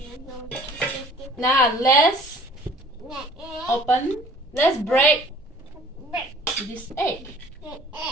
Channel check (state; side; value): normal; both; correlation 0.51